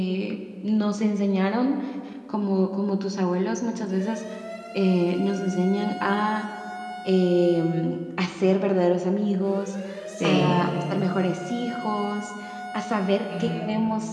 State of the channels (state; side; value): identical; both; correlation 1.00